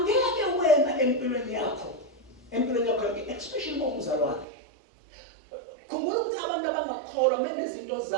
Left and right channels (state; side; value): drops out; left; at 4.5 s